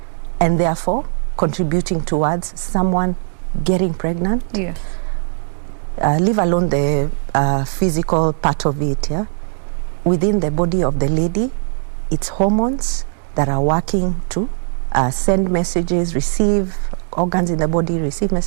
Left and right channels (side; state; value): left; silent; digital silence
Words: and therefore contributing towards someone getting pregnant. Yes. Leave alone the physical part of it. Yeah? Within the body of the lady, it's hormones that are working to send messages, receive organs in the body, receive